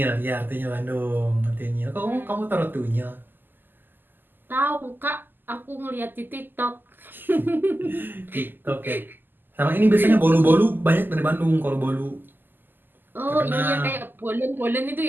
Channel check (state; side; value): late; left; 0.091 ms